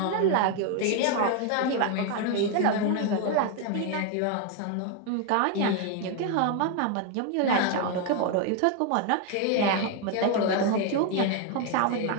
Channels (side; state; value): both; different; correlation 0.01